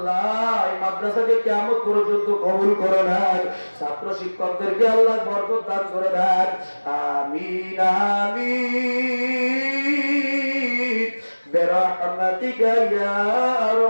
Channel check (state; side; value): inverted; both; correlation -1.00